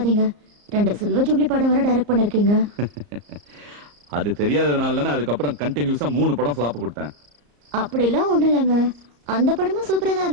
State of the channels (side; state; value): left; late; 34 ms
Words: 2 சில்வர் ஜூப்ளி படம் வர டைரக்ட் பண்ணிருக்கீங்க. அது தெரியாததுனால தானே அதுக்கப்புறம் கண்டினியூஸா 3 படம் ஃபிளாப் கொடுத்தேன். அப்படிலாம் ஒண்ணும் இல்லைங்க. அந்த படமும் சூப்பரா தான்